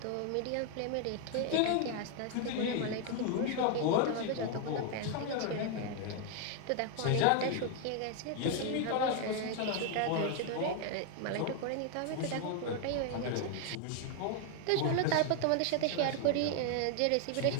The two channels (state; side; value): different; both; correlation 0.01